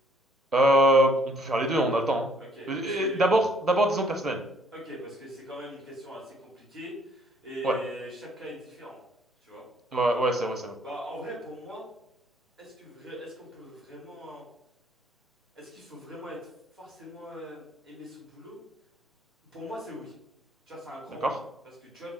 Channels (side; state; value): both; normal; correlation 0.63